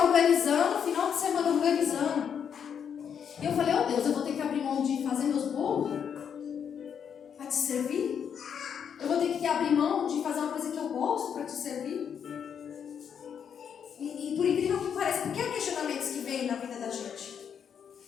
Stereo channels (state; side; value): quieter; right; 7.7 dB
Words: organizando, final de semana organizando. E eu falei: oh Deus, eu vou ter que abrir mão de fazer meus bolos para te servir? Eu vou ter que abrir mão de fazer uma coisa que eu gosto para te servir? E por incrível que pareça, porque há questionamentos que vêm na vida da gente.